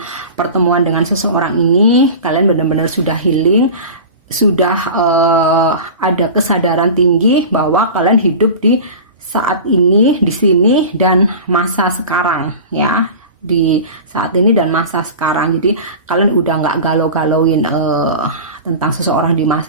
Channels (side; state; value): both; inverted; correlation -0.33